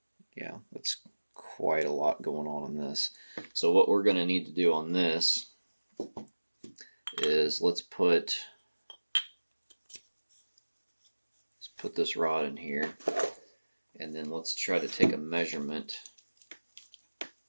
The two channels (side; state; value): both; inverted; correlation -1.00